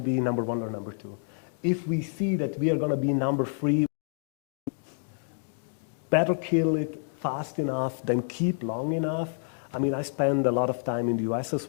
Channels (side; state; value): right; silent; digital silence